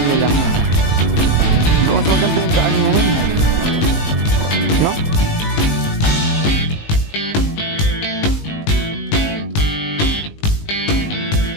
nila. So, mas maganda yung daan mo. No?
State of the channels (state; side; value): late; right; 19 ms